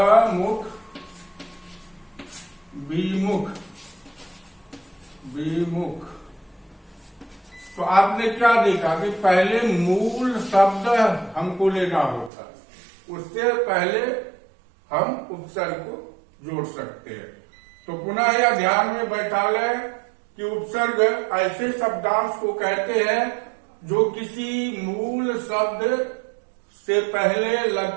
विमुख, विमुख। तो आपने क्या देखा कि पहले मूल शब्द हमको लेना होता, उससे पहले हम उपसर्ग को जोड़ सकते हैं। तो पुनः यह ध्यान में बैठा लें कि उपसर्ग ऐसे शब्दांश को कहते हैं जो किसी मूल शब्द से पहले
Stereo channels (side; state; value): left; drops out; at 12.3 s